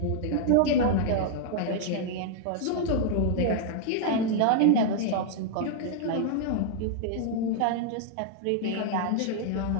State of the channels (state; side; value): different; both; correlation -0.01